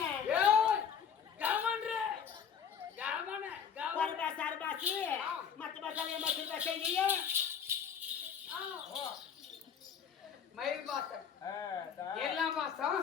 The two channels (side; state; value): right; quieter; 7.5 dB